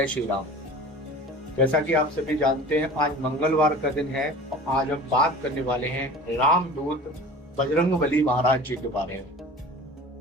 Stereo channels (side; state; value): both; normal; correlation 0.40